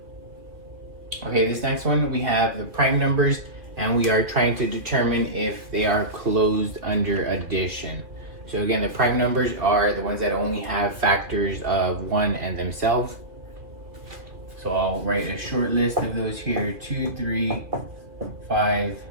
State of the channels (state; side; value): late; left; 2.4 ms